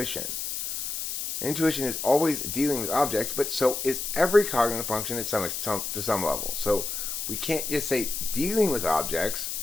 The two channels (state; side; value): noise; left; hiss, 4 dB below the sound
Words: Intuition is always dealing with objects, but so is every cognitive function to some level. So we can't just say dealing with objects